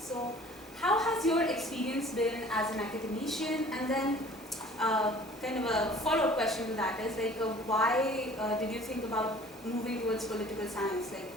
how has your experience been as an academician? And then, kind of a follow-up question to that is like, why did you think about moving towards political science, like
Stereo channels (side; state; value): both; normal; correlation 0.49